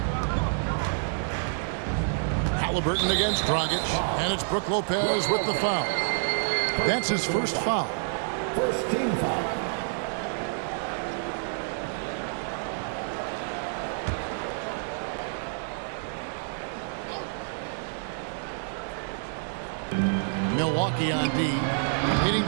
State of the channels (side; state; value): left; silent; 59 dB below the other